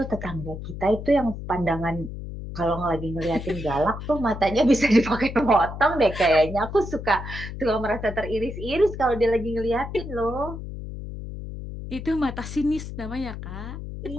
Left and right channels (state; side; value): noise; left; hum, 9 dB below the sound